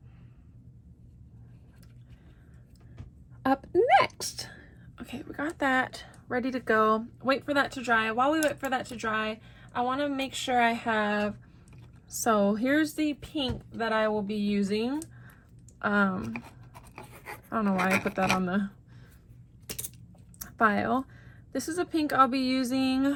Up next. Okay, we got that ready to go. Wait for that to dry. While we wait for that to dry, I want to make sure I have, so here's the pink that I will be using. I don't know why I put that on the file. This is a pink I'll be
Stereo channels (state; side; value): identical; both; correlation 1.00